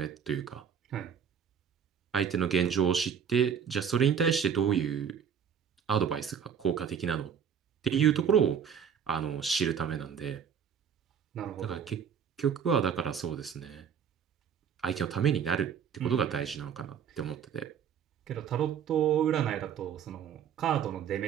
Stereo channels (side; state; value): left; quieter; 7.7 dB